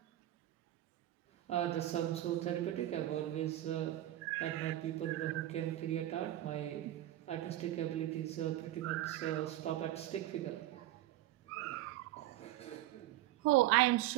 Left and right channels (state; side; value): quieter; left; 14.5 dB